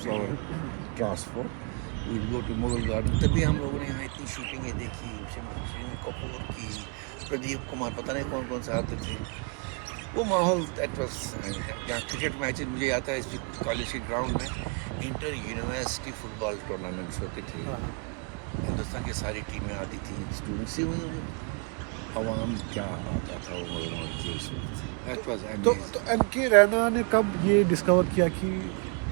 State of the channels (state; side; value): quieter; left; 33.7 dB